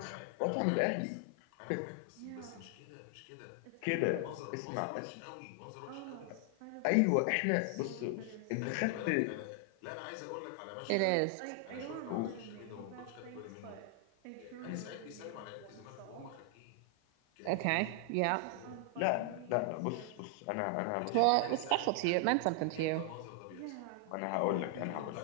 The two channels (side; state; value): both; different; correlation 0.00